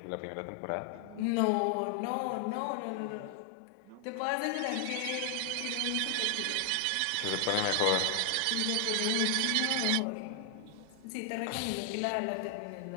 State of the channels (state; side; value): different; both; correlation 0.00